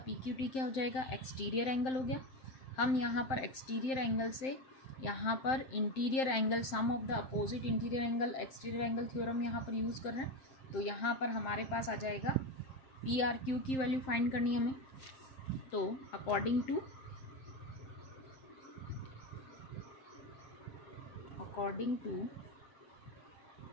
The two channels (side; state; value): right; late; 7.7 ms